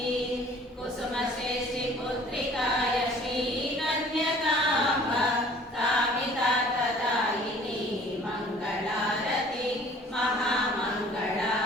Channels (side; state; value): both; normal; correlation 0.51